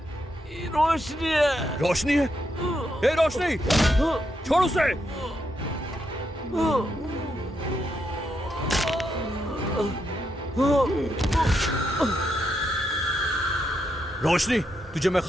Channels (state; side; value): normal; both; correlation 0.80